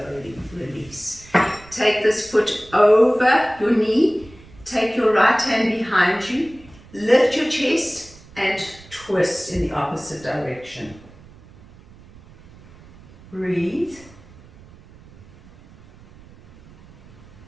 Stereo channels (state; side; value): noise; right; rumble, 23 dB below the sound